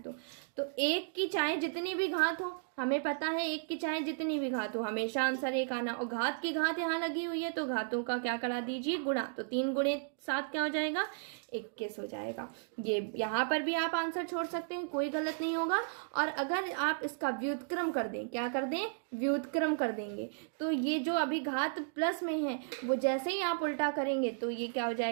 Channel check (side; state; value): left; silent; digital silence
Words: दो। तो 1 की चाहे जितनी भी घात हो, हमें पता है 1 की चाहे जितनी भी घात हो हमेशा आंसर 1 आना। और घात की घात यहाँ लगी हुई है तो घातों का क्या करा दीजिए, गुणा। तो 3 गुणे 7 क्या हो जाएगा, 21 हो जाएगा। ये यहाँ पर भी आप आंसर छोड़ सकते हैं, कोई गलत नहीं होगा। और अगर आप इसका व्युत्क्रम कर दें, क्या कर दें, व्युत्क्रम कर देंगे, तो ये जो अभी घात प्लस में है वो जैसे ही आप उल्टा करेंगे तो ये क्या हो